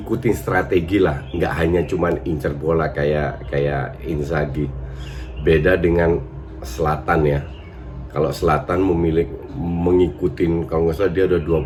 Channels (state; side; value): identical; both; correlation 1.00